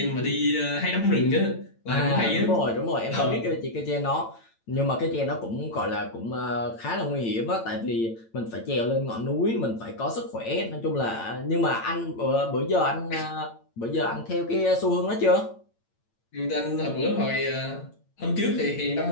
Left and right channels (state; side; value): late; right; 8.9 ms